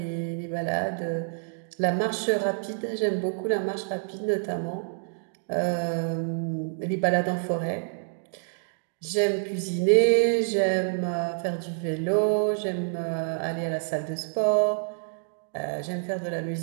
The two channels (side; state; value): left; silent; digital silence